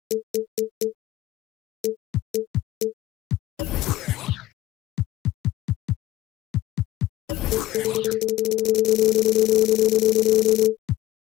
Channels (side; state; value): right; quieter; 15.5 dB